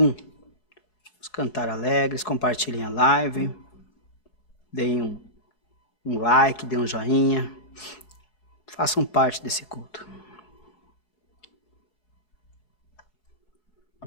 Vamos cantar alegres, compartilhem a live, deem um like, deem um joinha, façam parte desse culto.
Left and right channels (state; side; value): late; right; 4.7 ms